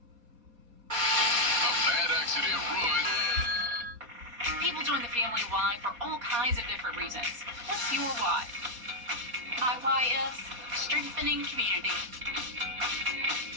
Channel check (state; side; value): late; left; 4.1 ms